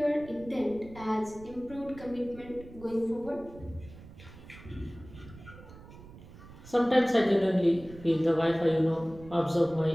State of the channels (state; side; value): noise; right; rumble, 18 dB below the sound